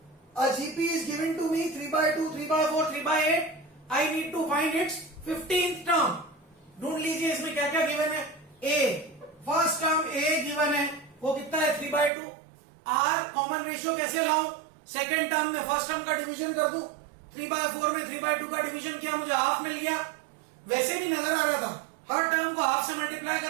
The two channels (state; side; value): drops out; left; at 12.1 s